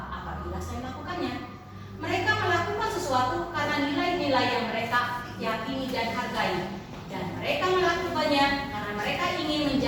apabila saya melakukannya? Mereka melakukan sesuatu karena nilai-nilai yang mereka yakini dan hargai. Dan mereka melakukannya karena mereka ingin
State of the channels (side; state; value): both; identical; correlation 1.00